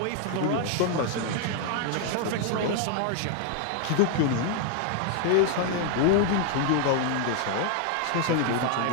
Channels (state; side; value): different; both; correlation 0.00